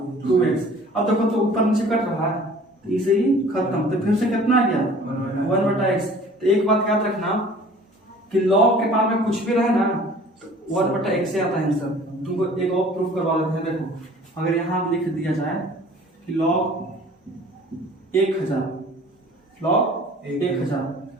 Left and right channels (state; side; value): normal; both; correlation 0.48